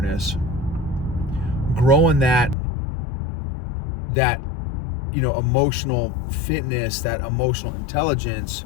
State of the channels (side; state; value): right; drops out; at 2.6 s